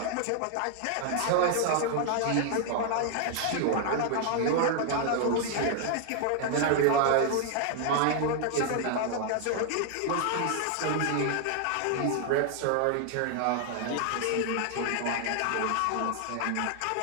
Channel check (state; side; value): different; both; correlation 0.00